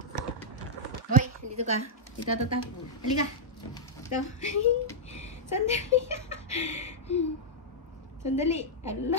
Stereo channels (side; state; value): both; normal; correlation -0.07